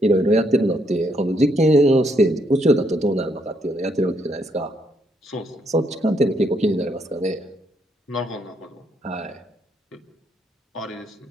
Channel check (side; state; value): both; normal; correlation 0.74